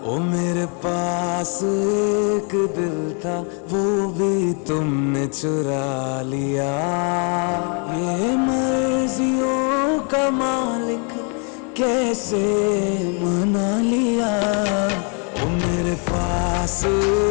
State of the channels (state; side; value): quieter; right; 38.3 dB